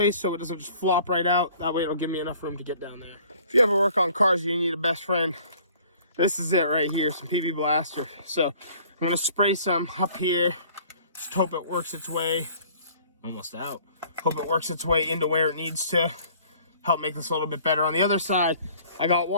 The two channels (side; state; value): both; inverted; correlation -0.53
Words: so it doesn't just flop right out. That way it'll give me enough room to get down there. If you ever work on cars, you need a best friend. This is it right here, some PB Blaster. So I'm going to spray some up here. Just hope it works its way, almost out. Hope it works its way into where it needs to. Help make this a little bit better. On the other side, I got